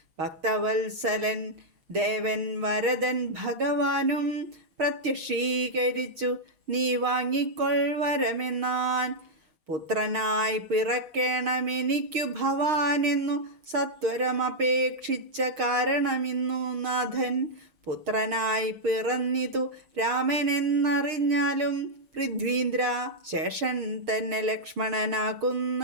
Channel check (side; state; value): left; late; 6.5 ms